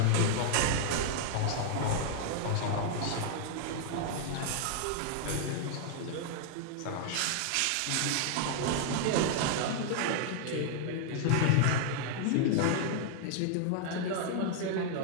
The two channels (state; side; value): different; both; correlation -0.01